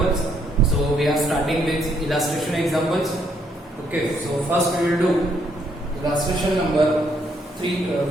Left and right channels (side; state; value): both; normal; correlation 0.72